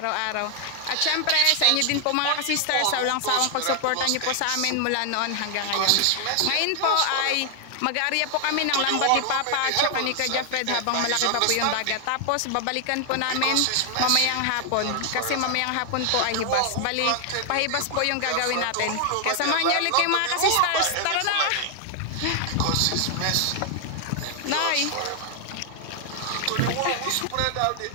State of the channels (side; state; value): both; different; correlation 0.00